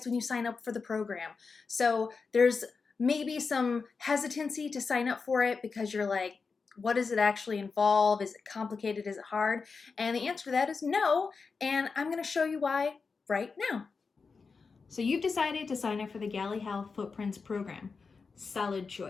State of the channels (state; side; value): quieter; right; 4.8 dB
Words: when you sign up for the program. So there's maybe some hesitancy to sign up for it because you're like, what does it actually involve? Is it complicated? Is it hard? And the answer to that is no, and I'm going to show you why right now. So you've decided to sign up for the Gali Health Footprints program. Solid